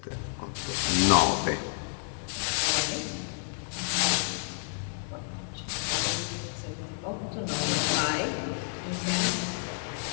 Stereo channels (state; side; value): silent; right; digital silence